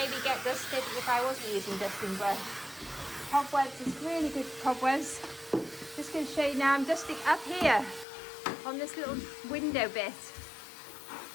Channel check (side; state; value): right; drops out; at 8.1 s